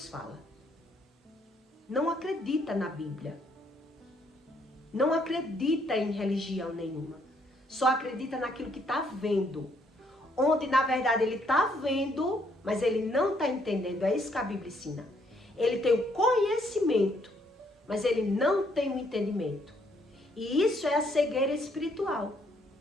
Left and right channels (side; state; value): both; normal; correlation 0.69